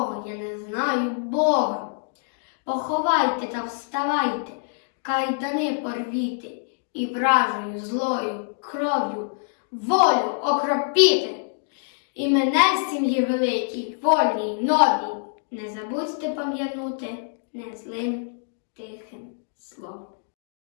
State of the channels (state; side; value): silent; right; digital silence